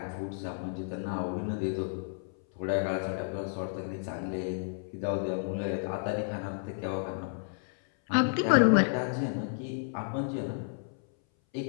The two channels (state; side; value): silent; right; 57 dB below the other